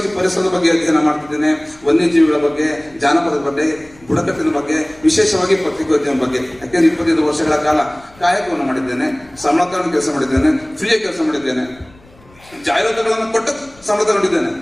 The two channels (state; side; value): noise; left; rumble, 27 dB below the sound